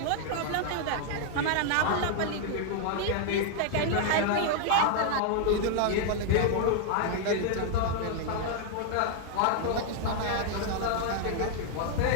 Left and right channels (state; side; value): different; both; correlation 0.00